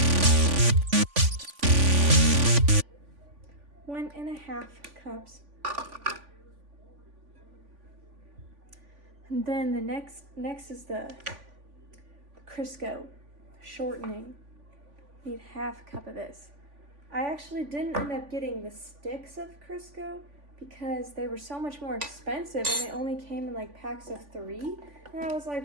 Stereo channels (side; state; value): left; late; 3.5 ms